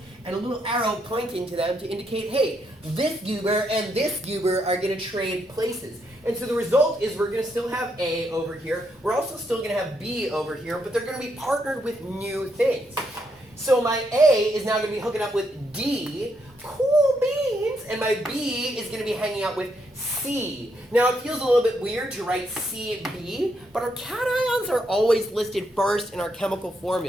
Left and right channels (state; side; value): normal; both; correlation 0.77